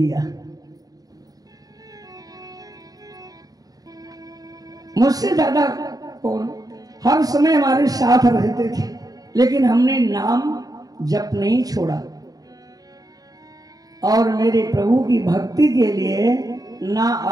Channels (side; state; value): left; late; 0.18 ms